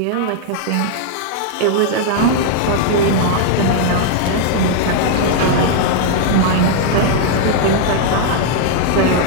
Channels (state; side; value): different; both; correlation 0.00